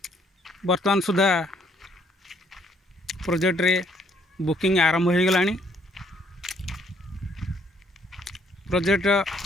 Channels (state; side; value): normal; both; correlation 0.67